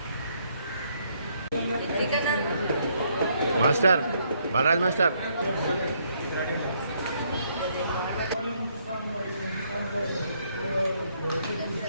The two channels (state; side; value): inverted; both; correlation -0.71